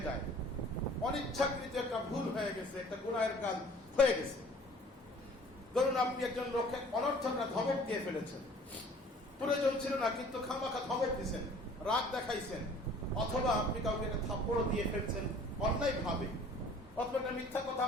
যায়, অনিচ্ছাকৃত একটা ভুল হয়ে গেছে, একটা গুনাহের কাজ হয়ে গেছে, ধরুন আপনি একজন লোককে অনর্থক ধমক দিয়ে ফেলেছেন, প্রয়োজন ছিল না কিন্তু খামাখা ধমক দিয়েছেন, রাগ দেখাইছেন, অথবা আপনি কাউকে একটা থাপ্পড় দিয়ে ফেলছেন অন্যায় ভাবে, অথবা একটা মিথ্যা কথা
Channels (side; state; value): both; normal; correlation 0.51